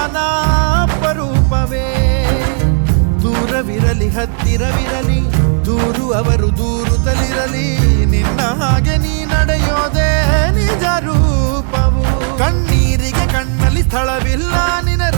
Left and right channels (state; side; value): silent; left; 55 dB below the other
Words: ಅಪರೂಪವೇ ದೂರವಿರಲಿ ಹತ್ತಿರವಿರಲಿ ದೂರು ಅವರು ದೂರುತ್ತಲಿರಲಿ ನಿನ್ನ ಹಾಗೆ ನೀ ನಡೆಯೋದೇ ನಿಜ ರೂಪವು ಕಣ್ಣೀರಿಗೆ ಕಣ್ಣಲ್ಲಿ ಸ್ಥಳವಿಲ್ಲ ನಿನ್ನ